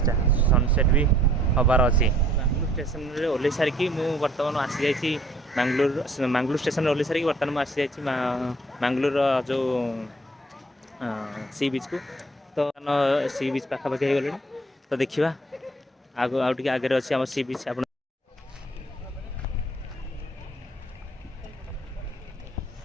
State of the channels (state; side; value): normal; both; correlation 0.59